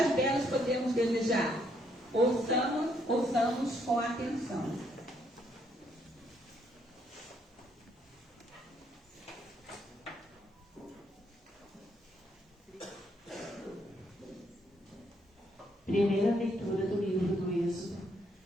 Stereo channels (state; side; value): normal; both; correlation 0.72